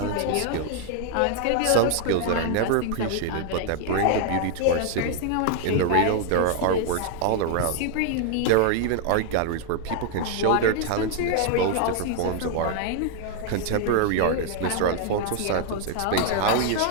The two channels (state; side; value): different; both; correlation 0.00